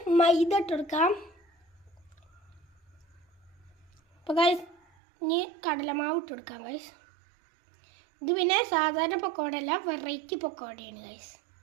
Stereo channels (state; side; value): drops out; left; at 4.8 s